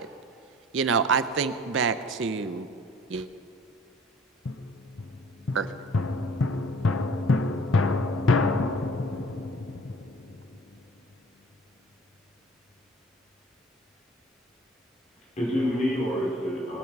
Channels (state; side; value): normal; both; correlation 0.51